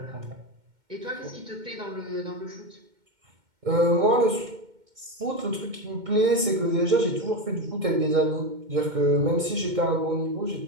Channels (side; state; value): left; late; 2.1 ms